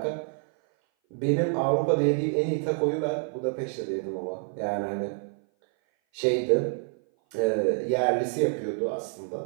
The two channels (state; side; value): silent; left; 57 dB below the other